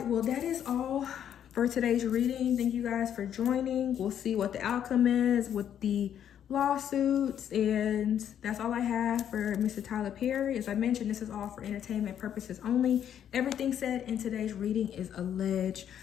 well, that is all for today's reading. Thank you guys for joining. We'll see what the outcome is with the lawsuits, and that's all I have for Mr. Tyler Perry. As I mentioned, this is all for entertainment purposes only. Everything said in today's reading is alleged.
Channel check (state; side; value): quieter; right; 9.6 dB